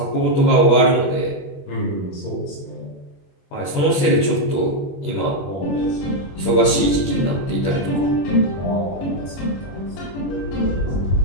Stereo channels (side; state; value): right; late; 21 ms